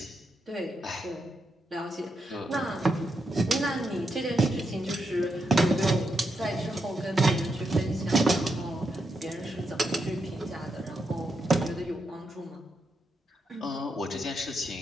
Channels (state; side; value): normal; both; correlation 0.83